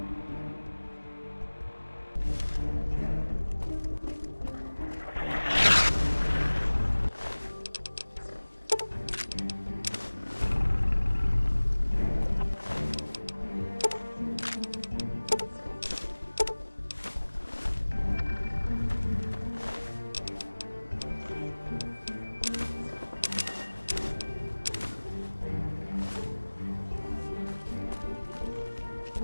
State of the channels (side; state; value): both; inverted; correlation -1.00